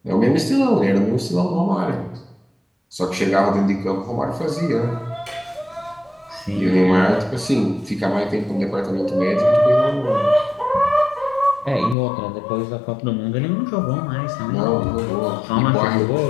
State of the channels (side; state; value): right; drops out; at 12.0 s